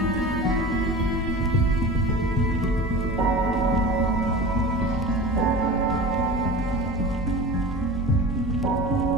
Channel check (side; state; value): both; normal; correlation 0.33